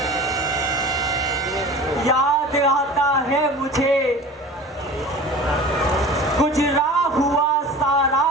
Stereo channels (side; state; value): both; normal; correlation 0.38